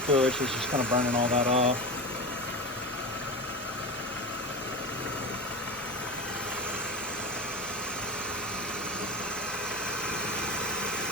it's just kind of burning all that off.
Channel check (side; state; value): both; normal; correlation 0.25